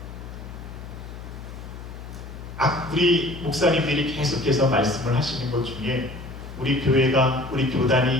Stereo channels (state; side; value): noise; left; hum, 12 dB below the sound